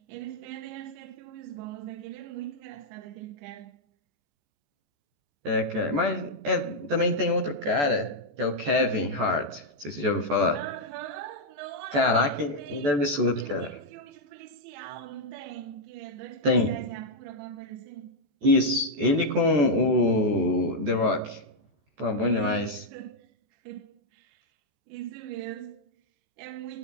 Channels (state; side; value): late; left; 14 ms